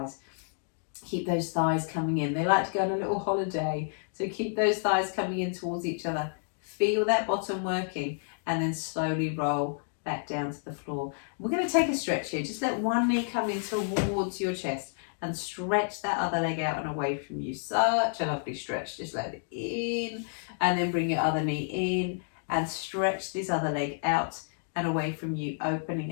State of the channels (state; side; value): silent; right; digital silence